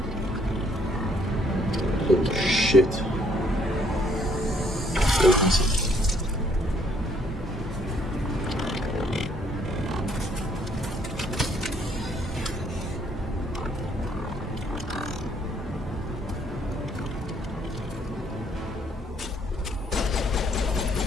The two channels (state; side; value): normal; both; correlation 0.66